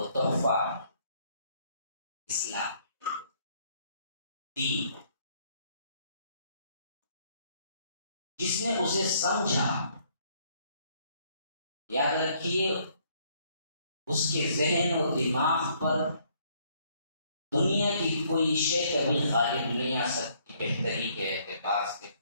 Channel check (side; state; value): both; inverted; correlation -0.66